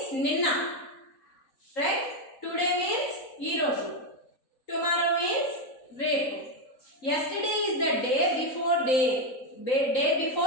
ninna, right? Today means ee roju. Tomorrow means repu. Yesterday is the day before day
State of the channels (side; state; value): right; late; 3.9 ms